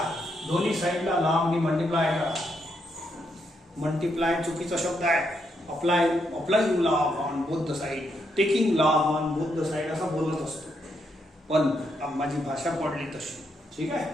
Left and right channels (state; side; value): normal; both; correlation 0.78